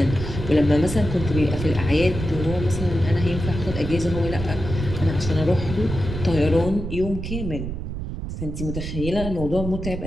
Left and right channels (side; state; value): right; noise; rumble, 6 dB below the sound